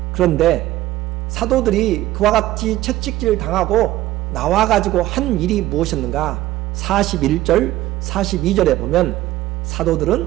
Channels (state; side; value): quieter; left; 15.5 dB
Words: 그런데 사도들이 그와 같이 채찍질 당하고 나와가지고 한 일이 무엇이었는가? 41절, 42절에 보면